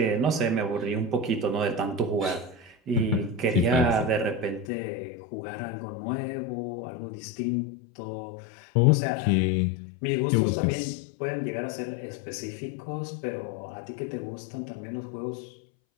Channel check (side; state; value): right; drops out; at 4.7 s